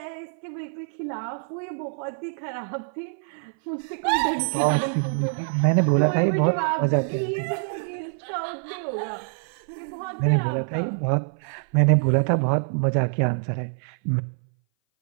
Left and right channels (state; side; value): silent; left; 59 dB below the other